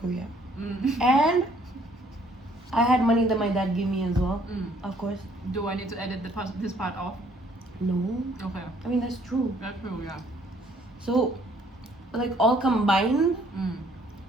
Korea. Mm. And I had money that my dad gave me as well, Mm. of course. Do I need to edit this part off? No, Okay. I mean, that's true. That's true, yeah. So, like, all combined, Mm.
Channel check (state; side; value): normal; both; correlation 0.62